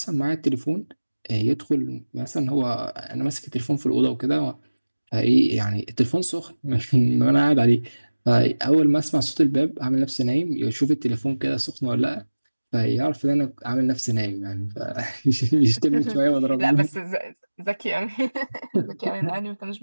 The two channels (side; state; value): both; inverted; correlation -1.00